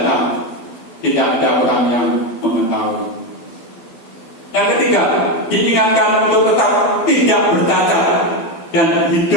tidak ada orang yang mengetahui. Yang ketiga, diingatkan untuk tetap tidak bercacat dan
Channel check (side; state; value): right; late; 12 ms